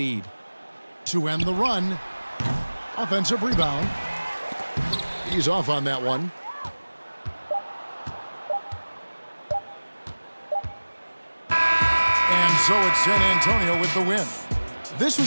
To end the run, offensive rebound. He's off on that one. And so it's San Antonio with the win. This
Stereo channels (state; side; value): inverted; both; correlation -1.00